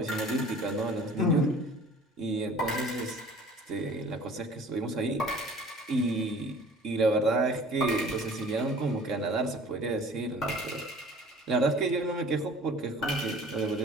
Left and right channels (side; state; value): both; normal; correlation 0.48